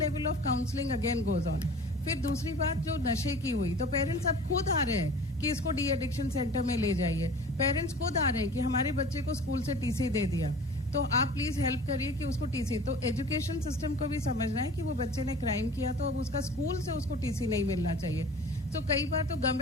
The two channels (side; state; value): both; normal; correlation 0.42